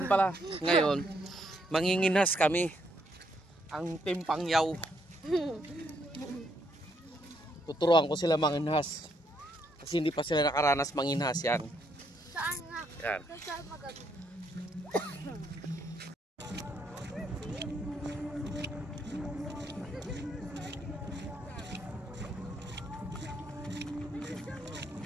pala. Ngayon, manginginas kami. Ang Team Pangyaw. Tuturuan ko sila manginhas. Kasi hindi pa sila nakaranas manginhas yan. Saan nga? Yan. Saan magagawa?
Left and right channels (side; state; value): both; normal; correlation 0.74